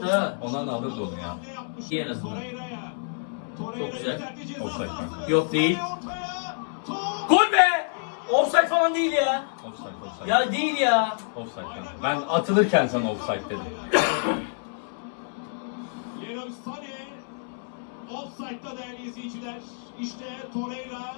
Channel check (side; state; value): right; silent; 60 dB below the other